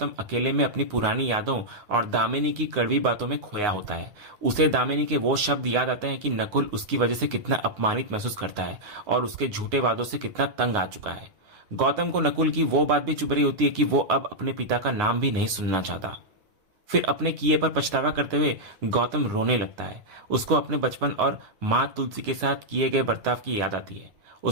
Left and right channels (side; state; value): left; late; 9.6 ms